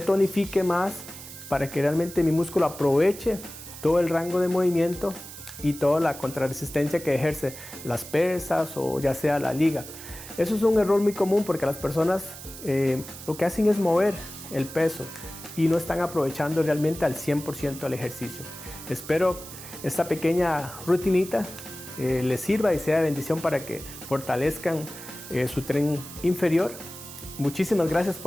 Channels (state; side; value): noise; right; hiss, 14 dB below the sound